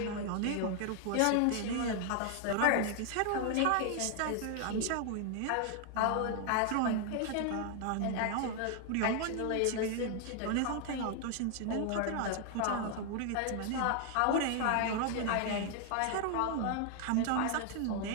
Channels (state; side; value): different; both; correlation 0.00